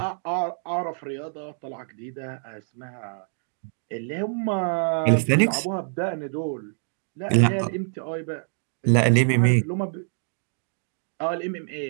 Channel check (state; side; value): silent; left; digital silence